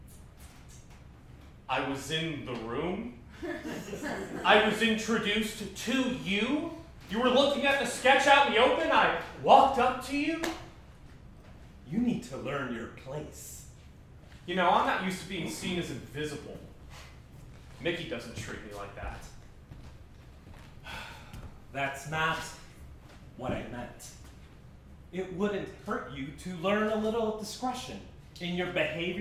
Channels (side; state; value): both; identical; correlation 1.00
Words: I was in the room. I was introduced to you You were looking at the sketch out in the open. I walked up to you. You need to learn your place. You know, I'm not used to being seen as invisible. Mickey doesn't treat me like that. That's not what I meant. It wouldn't hurt you to learn a little discretion in your